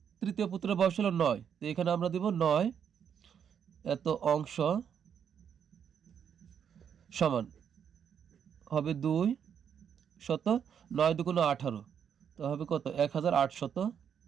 তৃতীয় পুত্রের বয়স হলো 9, তো এখানে আমরা দেব 9 এত অংশ সমান হবে 2 শত 9 দুগুণ 18, তো হবে কত 1800। তো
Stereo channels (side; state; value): left; quieter; 8.0 dB